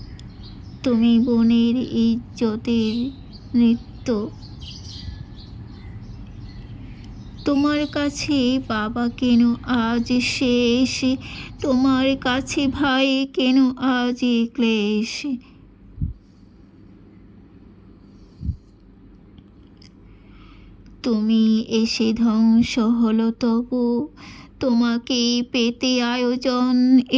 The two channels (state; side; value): identical; both; correlation 1.00